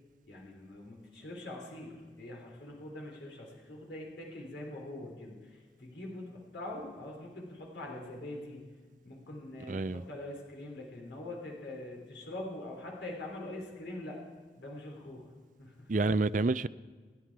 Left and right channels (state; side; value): normal; both; correlation 0.62